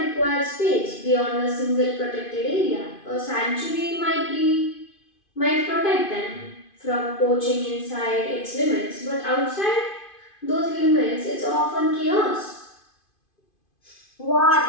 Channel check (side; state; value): right; late; 2.5 ms